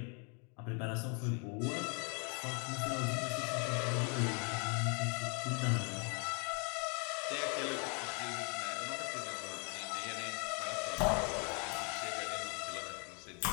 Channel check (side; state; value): right; quieter; 36.4 dB